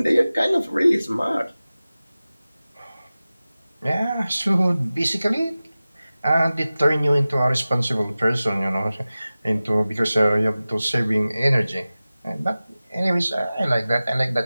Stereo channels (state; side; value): inverted; both; correlation -0.97